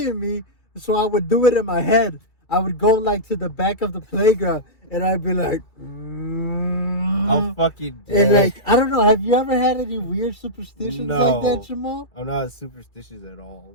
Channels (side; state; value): right; late; 2.3 ms